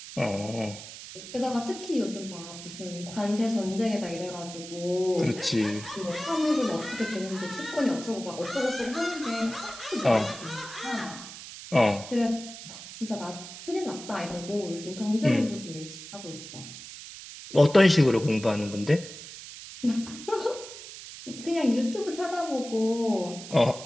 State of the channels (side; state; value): right; noise; hiss, 13 dB below the sound